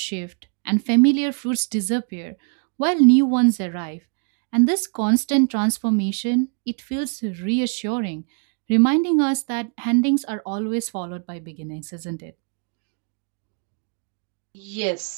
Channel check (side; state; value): left; quieter; 39.1 dB